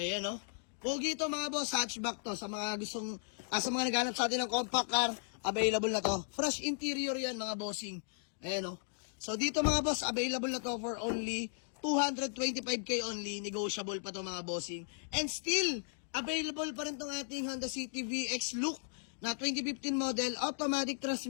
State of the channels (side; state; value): right; silent; digital silence